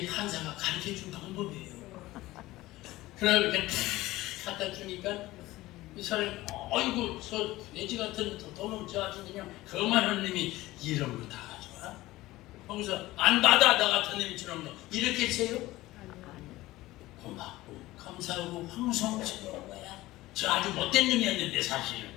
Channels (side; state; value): right; quieter; 17.8 dB